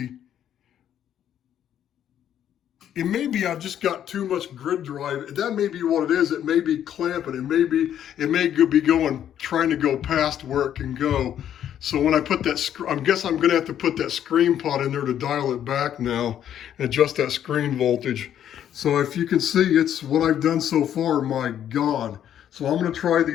It may be I've just got too much grid drive. That may be what it is. It may be clamping. It may be going, trying to go past where it can go. So when I put that, I guess I'm gonna have to put that screen pot in there to dial it back now and adjust that screen voltage. So if you can see, it's what I've done so far, my God. So I'm gonna try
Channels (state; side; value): quieter; right; 10.2 dB